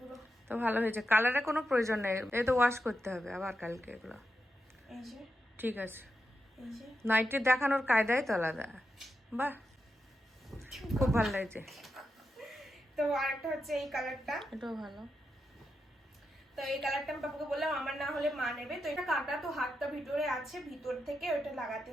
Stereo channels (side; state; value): both; normal; correlation 0.87